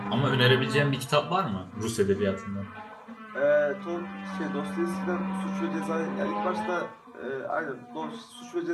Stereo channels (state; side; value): identical; both; correlation 1.00